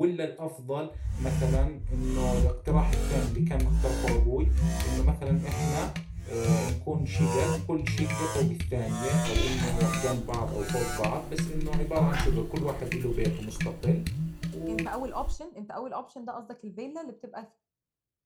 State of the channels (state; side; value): identical; both; correlation 1.00